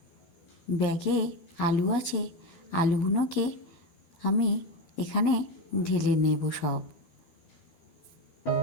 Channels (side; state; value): right; late; 12 ms